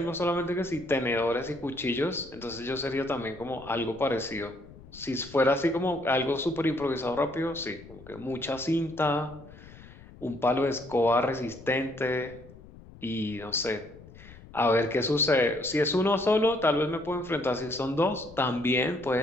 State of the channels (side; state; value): left; noise; rumble, 19 dB below the sound